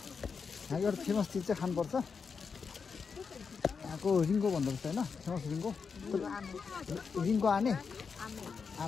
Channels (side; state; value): right; quieter; 5.6 dB